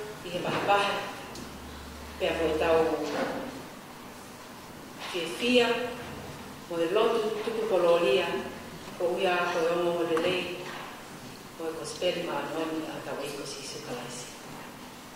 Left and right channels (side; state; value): both; identical; correlation 1.00